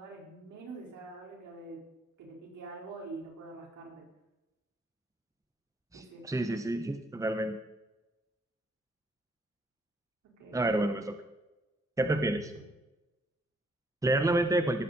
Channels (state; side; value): normal; both; correlation 0.69